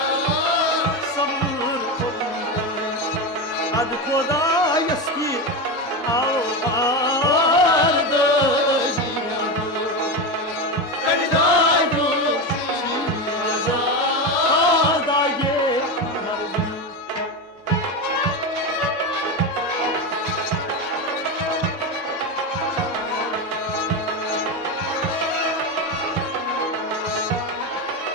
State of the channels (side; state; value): both; normal; correlation 0.17